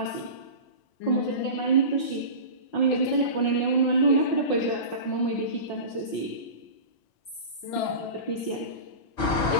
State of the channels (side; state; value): right; late; 5.5 ms